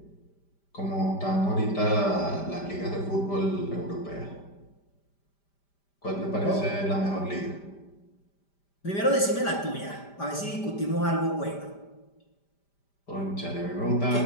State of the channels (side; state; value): right; late; 5.0 ms